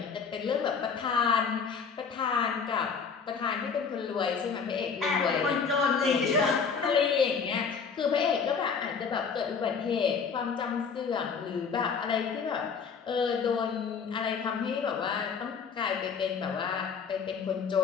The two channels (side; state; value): right; quieter; 5.9 dB